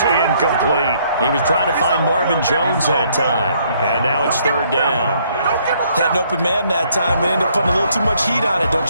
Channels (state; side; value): inverted; both; correlation -0.67